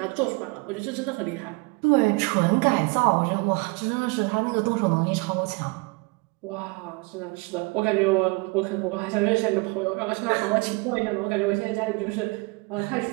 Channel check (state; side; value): quieter; left; 27.9 dB